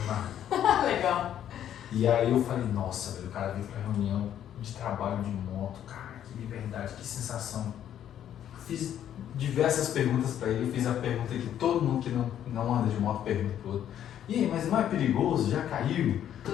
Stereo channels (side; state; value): right; quieter; 10.4 dB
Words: na rua. Legal. E aí eu falei, nossa, velho, o cara veio pra reunião de trabalho de moto, cara, que liberdade, que sensação. Fiz diversas perguntas pra ele, eu fiz a pergunta que todo mundo que não anda de moto pergunta pro outro. E aí, mas não é perigoso? Já caiu?